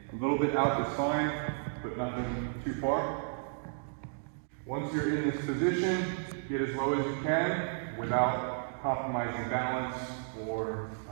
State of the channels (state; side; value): silent; left; digital silence